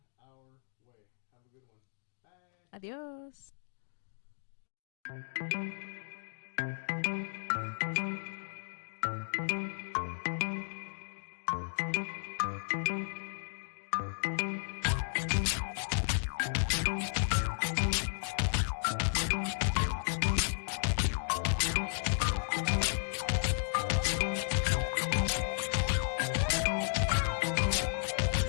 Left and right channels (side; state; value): right; silent; digital silence